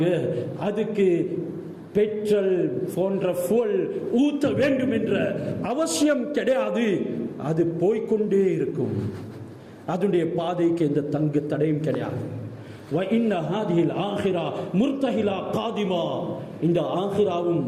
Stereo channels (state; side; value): identical; both; correlation 1.00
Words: அதுக்கு பெட்ரோல் போன்ற fuel ஊத்த வேண்டும் என்ற அவசியம் கிடையாது. அது போய்கொண்டே இருக்கும், அதனுடைய பாதைக்கு எந்த தங்கு தடையும் கிடையாது. இந்த ஆகிராவும்